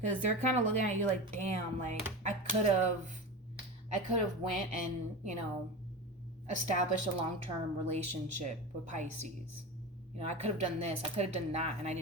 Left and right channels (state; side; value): normal; both; correlation 0.26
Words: they're kind of looking at you like, damn, like, I could have went and, you know, established a long-term relationship with Pisces. You know, I could have done this, I could have done that, and I